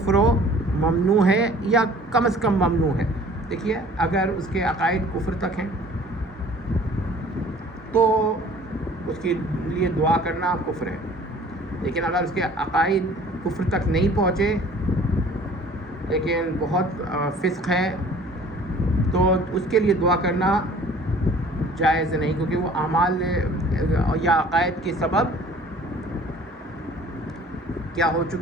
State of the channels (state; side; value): normal; both; correlation 0.50